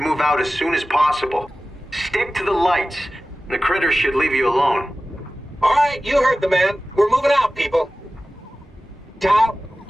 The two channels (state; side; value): normal; both; correlation 0.96